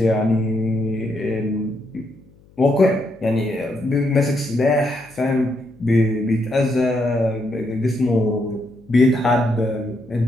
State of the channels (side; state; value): left; noise; hum, 28 dB below the sound